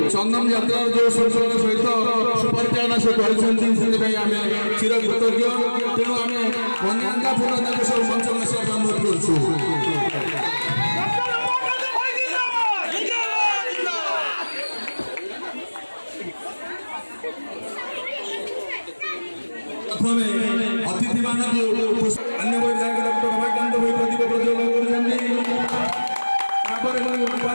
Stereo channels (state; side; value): inverted; both; correlation -1.00